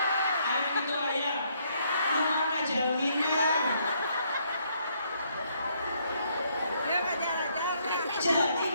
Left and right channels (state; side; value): inverted; both; correlation -0.70